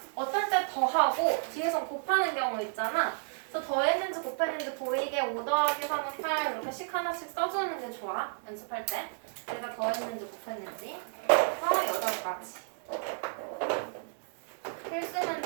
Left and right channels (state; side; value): silent; left; digital silence